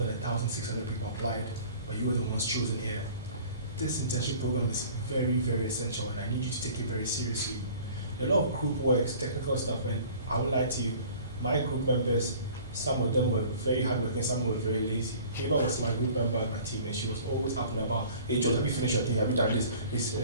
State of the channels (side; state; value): both; inverted; correlation -0.48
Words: 1,600 people applied, but you were the ones chosen here. This internship program is very, very essential, and I need you to take it very seriously. There are a lot of group works, technical stuff, and I won't lie to you, my group members, some of them were very hardworking, some were very lazy. Eva was my group member on my team, and she was always asking about, hey George, have you finished your thing? Have you done this? It's